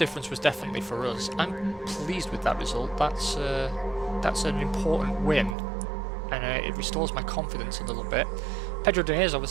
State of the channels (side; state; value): left; drops out; at 5.6 s